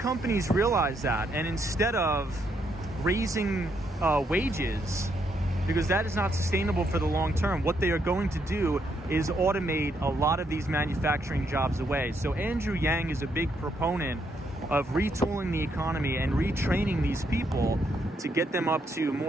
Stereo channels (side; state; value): both; normal; correlation 0.76